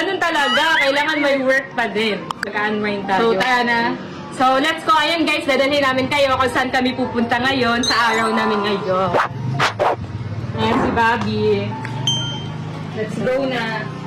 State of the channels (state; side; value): identical; both; correlation 1.00